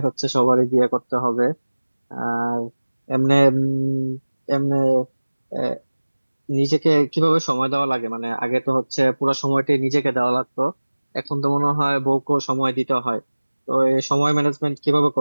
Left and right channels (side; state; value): both; inverted; correlation -1.00